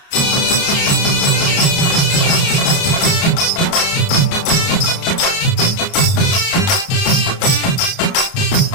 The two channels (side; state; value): right; late; 30 ms